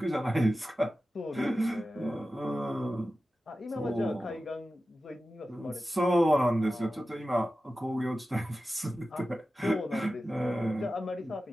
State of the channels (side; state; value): both; normal; correlation 0.94